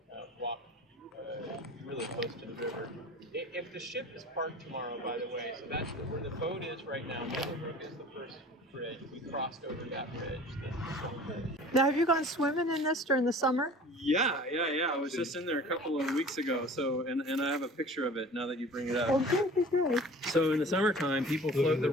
walk really close to the river. If the ship is parked tomorrow, by the way, so that's where the boat is right now. Mittlerbrücke is the first bridge. We crossed over that bridge. Now, have you gone swimming in this during the summer? Yeah. I was just in there a couple of weeks ago. So, and I have a picture of it now that you bring it up. Oh, good. So in the summertime, people float the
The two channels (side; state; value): both; normal; correlation 0.43